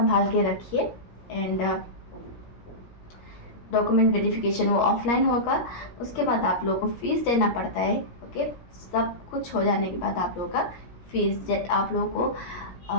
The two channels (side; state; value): right; late; 17 ms